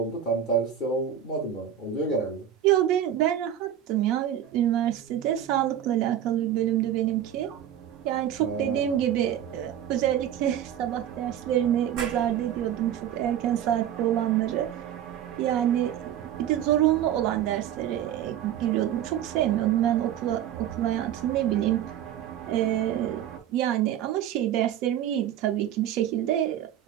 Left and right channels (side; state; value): left; quieter; 10.5 dB